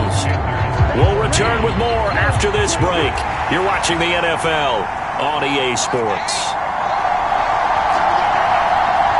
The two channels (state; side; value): identical; both; correlation 1.00